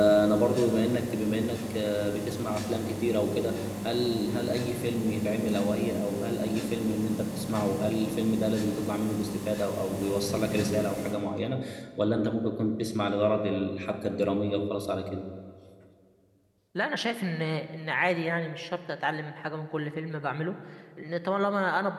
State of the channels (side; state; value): both; identical; correlation 1.00